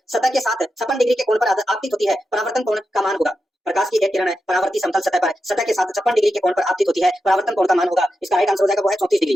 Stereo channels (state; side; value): normal; both; correlation 0.89